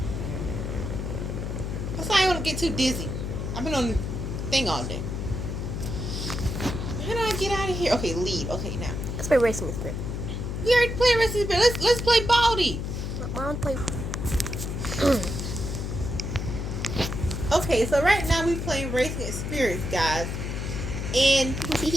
That's why I don't want to get too dizzy. I've been on the thing all day. How do I get out of here? Okay, lead. Okay, now. Let's play Racing Spirit. We already played Racing Spirit. Let's play Baldy. I want to play. Okay, so right now we playing Racing Spirits, guys. And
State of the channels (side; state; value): left; noise; hum, 4 dB below the sound